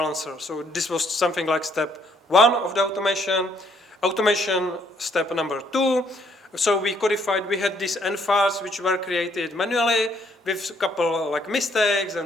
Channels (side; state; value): both; normal; correlation 0.68